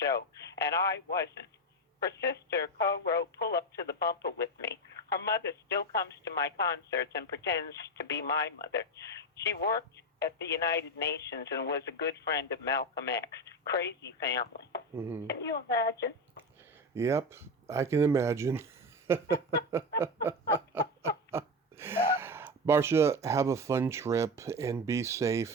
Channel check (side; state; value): both; normal; correlation 0.16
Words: show, and I wasn't. Her sister co-wrote Pull Up to the Bumper with me. Her mother still comes to my concerts and pretends to be my mother. She worked at the United Nations and was a good friend of Malcolm X. Crazy family. Can you imagine? Yep, I can imagine. Marcia, have a fun trip and be safe,